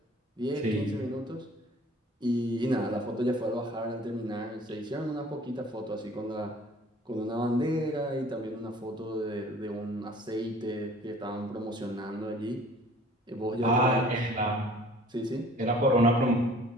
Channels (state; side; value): normal; both; correlation 0.51